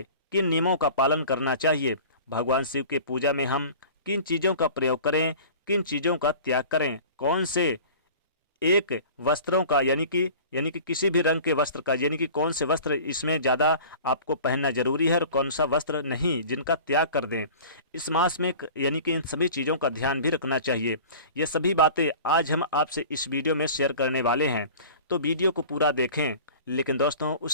किन नियमों का पालन करना चाहिए, भगवान शिव के पूजा में हम किन चीज़ों का प्रयोग करें, किन चीज़ों का त्याग करें, कौन से एक वस्त्रों का यानी कि किसी भी रंग के वस्त्र का यानी कि कौन से वस्त्र इसमें ज़्यादा आपको पहनना जरूरी है और कौन सा वस्त्र नहीं, जिनका त्याग कर दें। इस मास में यानी कि इन सभी चीज़ों का ध्यान भी रखना चाहिए। ये सभी बातें आज हम आपसे इस वीडियो में शेयर करने वाले हैं, तो वीडियो को पूरा देखें। लेकिन दोस्तों,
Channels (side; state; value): both; inverted; correlation -0.41